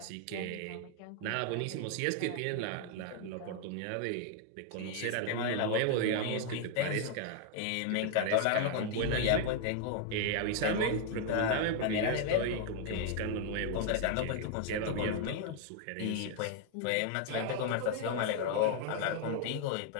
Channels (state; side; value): different; both; correlation 0.00